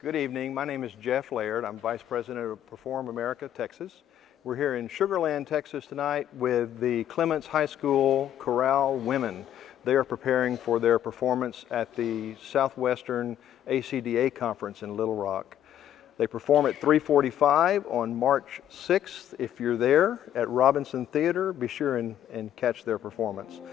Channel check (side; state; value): right; quieter; 11.0 dB